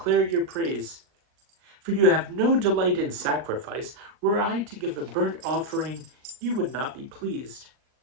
your praise. For you have no delight in sacrifice. Were I to give a burnt offering, you would not be pleased.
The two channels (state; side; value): late; left; 39 ms